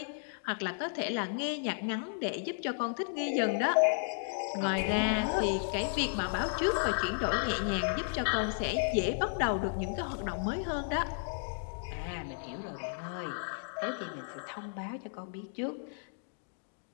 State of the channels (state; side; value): silent; right; digital silence